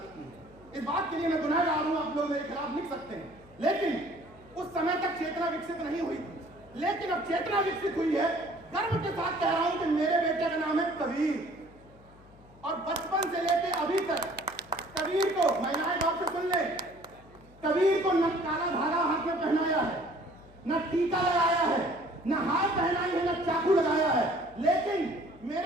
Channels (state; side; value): noise; left; hum, 25 dB below the sound